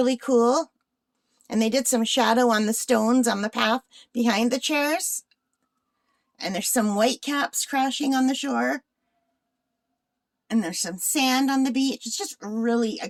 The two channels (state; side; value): identical; both; correlation 1.00